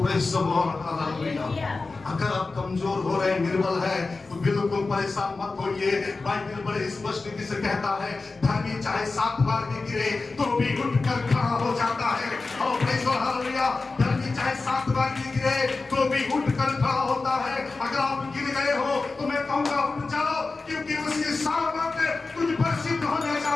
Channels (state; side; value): quieter; right; 3.8 dB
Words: the Lord, hallelujah. अगर आप कमजोर हो रहे हैं, निर्बल है, तो बिल्कुल परेशान मत होइए। बाइबल बड़े स्पष्ट रीति से कहता है, धर्मी चाहे 7 बार भी गिरे तो भी उठकर खड़ा हो जाता है। और प्रेज़ द लॉर्ड, हालेलुया। धर्मी चाहे 7 बार भी गिरे तो भी उठकर खड़ा होता है। अगर आप गिर गए हो तो मैं कहूंगा उठ जाओ, क्योंकि उसकी सामर्थ तुझ पर सिद्ध होने जा